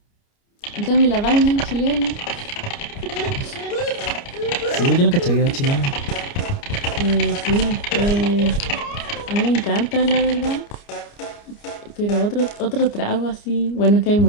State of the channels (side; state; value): right; late; 29 ms